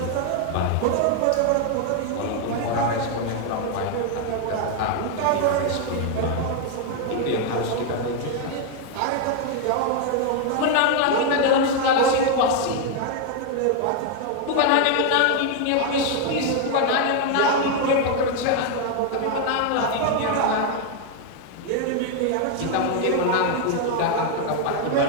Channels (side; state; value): both; different; correlation 0.01